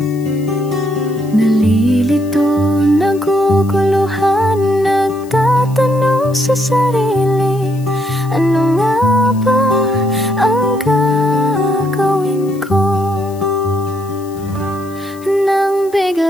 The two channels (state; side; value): noise; left; hiss, 24 dB below the sound